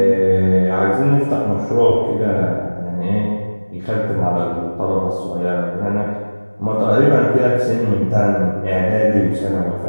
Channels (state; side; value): inverted; both; correlation -1.00